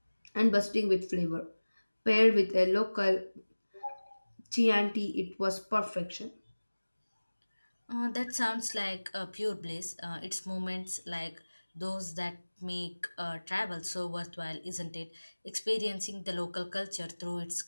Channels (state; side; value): inverted; both; correlation -1.00